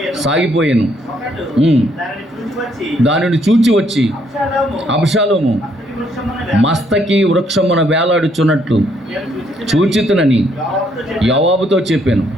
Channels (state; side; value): normal; both; correlation 0.70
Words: సాగిపోయాను. దానిని చూచి వచ్చి అబ్షాలోము మస్తకి వృక్షమున వేలాడుచున్నట్లు చూచితునని యోవాబుతో చెప్పాను.